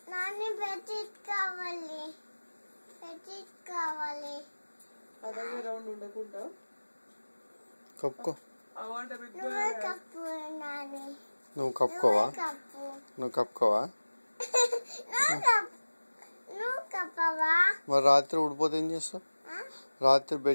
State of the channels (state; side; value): inverted; both; correlation -1.00